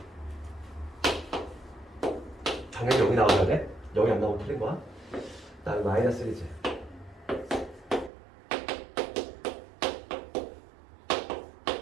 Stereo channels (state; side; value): drops out; left; at 8.1 s